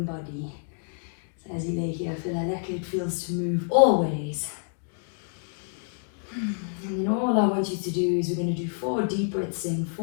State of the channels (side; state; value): right; silent; 59 dB below the other